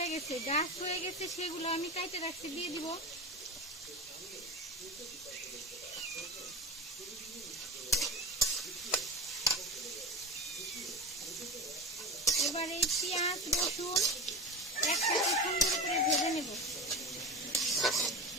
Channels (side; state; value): both; normal; correlation 0.25